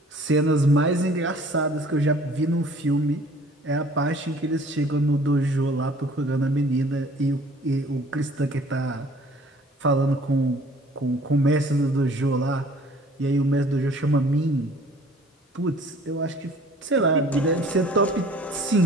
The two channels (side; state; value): both; normal; correlation 0.52